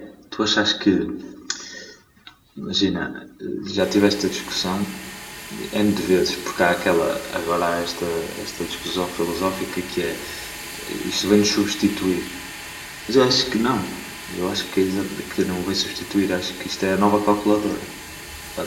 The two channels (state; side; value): identical; both; correlation 1.00